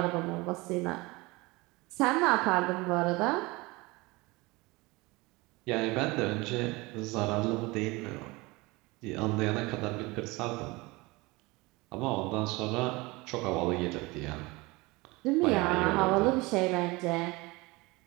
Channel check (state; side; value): quieter; left; 23.4 dB